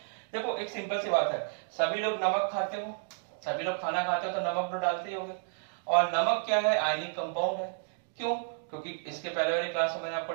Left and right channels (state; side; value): silent; left; digital silence